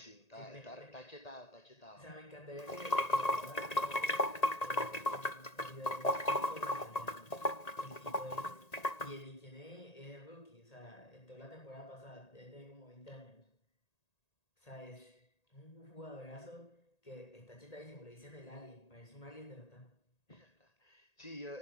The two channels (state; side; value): late; right; 1.8 ms